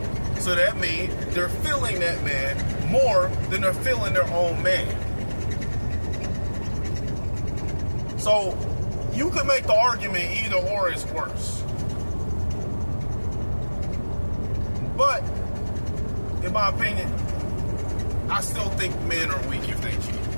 So that means they're feeling that man more than they're feeling their own man. So you can make the argument either or is worse. But in my opinion, I still think men are weak if they cheat.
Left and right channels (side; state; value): both; inverted; correlation -1.00